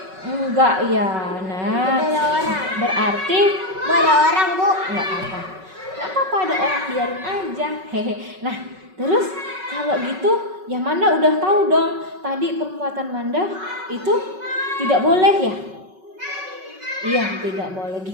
Enggak ya. Nah, Ada orang. berarti Ada orang Bu. nggak apa-apa. Nggak apa-apa, ada orang, biarin aja. Hehe. Nah, terus kalau gitu ya Manda udah tahu dong tadi perbuatan Manda itu tidak boleh ya? Iya, tidak boleh.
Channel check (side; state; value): left; late; 5.3 ms